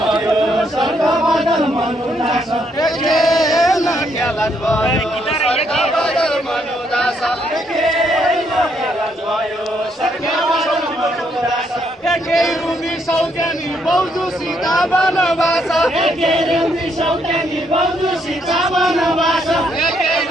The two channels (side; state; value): both; normal; correlation 0.73